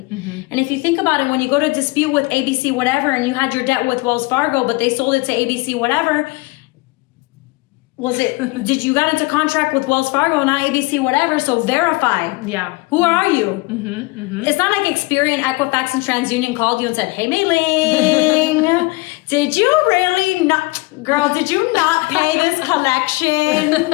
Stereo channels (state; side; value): quieter; right; 24.3 dB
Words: And if you think about it, when you go to dispute with ABC whatever and you had your debt with Wells Fargo, but they sold it to ABC whatever, did you got into contract with Wells Fargo, not ABC whatever, so verify. Yeah. Who are you? It's not like Experian, Equifax, and TransUnion called you and said, hey, Mei-Ling, did you really not, girl, did you not pay this collection?